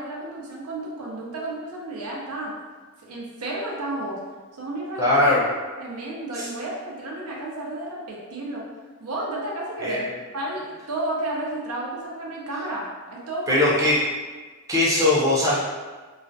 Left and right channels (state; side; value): normal; both; correlation -0.02